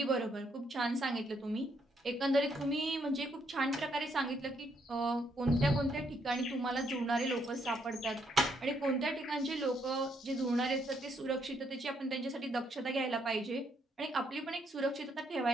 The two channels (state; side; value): normal; both; correlation 0.73